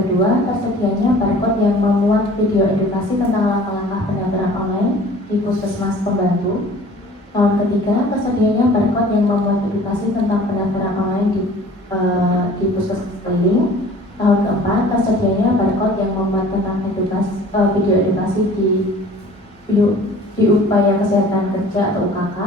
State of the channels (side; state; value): both; normal; correlation 0.48